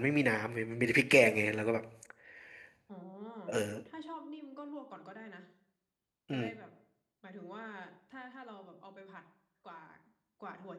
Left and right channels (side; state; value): both; identical; correlation 1.00